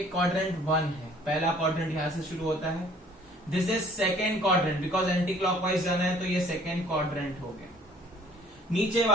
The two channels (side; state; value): both; normal; correlation 0.54